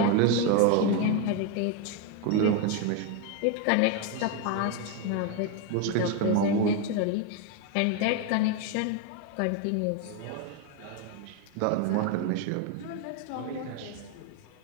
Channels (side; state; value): both; different; correlation 0.02